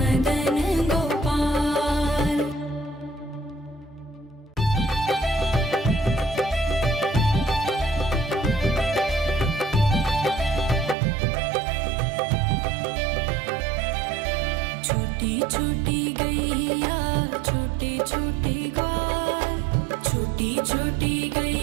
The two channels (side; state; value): left; drops out; at 11.0 s